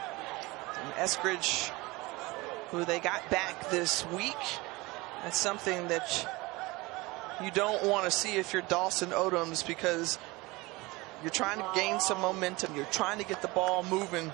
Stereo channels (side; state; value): left; quieter; 22.8 dB